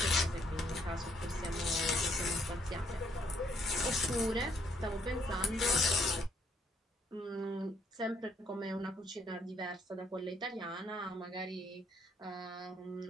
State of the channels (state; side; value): normal; both; correlation 0.68